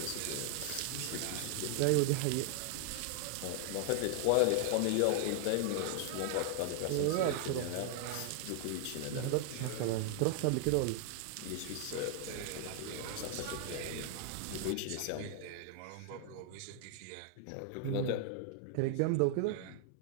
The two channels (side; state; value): both; different; correlation 0.00